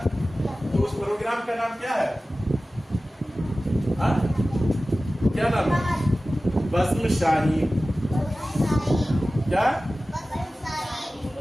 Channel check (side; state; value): both; normal; correlation 0.96